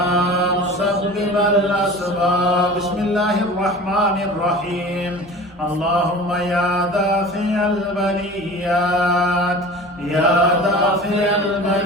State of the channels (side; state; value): both; normal; correlation 0.38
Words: مسبب الأسباب بسم الله الرحمن الرحيم اللهم يا دافع البليات يا دافع